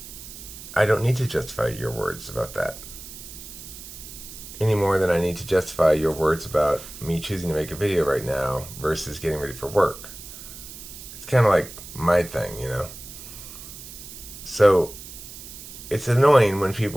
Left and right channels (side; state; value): right; noise; hiss, 14 dB below the sound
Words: I don't need to justify your words about that any more than I need to justify your words about me choosing to make a video right now versus getting ready for work. It's kind of like my thing, So it's annoying when